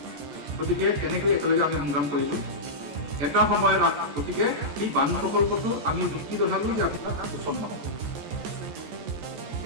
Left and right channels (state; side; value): late; left; 14 ms